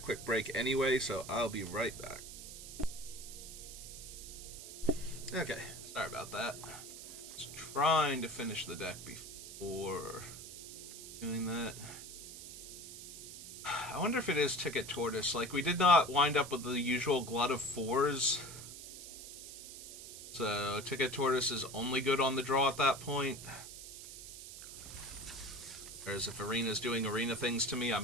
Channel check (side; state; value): right; noise; hiss, 12 dB below the sound